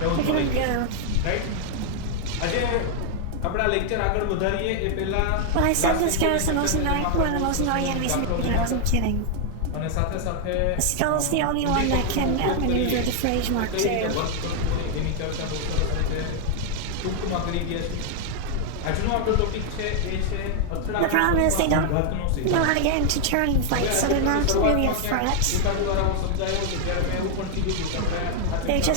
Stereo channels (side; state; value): both; different; correlation 0.00